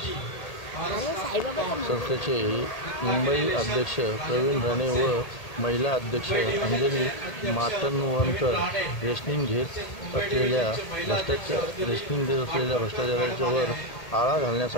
संस्थेचे मुंबई अध्यक्ष प्रवीण राणे व महिला अध्यक्ष अंजली माटणवणकर रेशनिंग घेत असलेल्या भ्रष्टाचारावर आळा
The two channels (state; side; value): late; right; 1.8 ms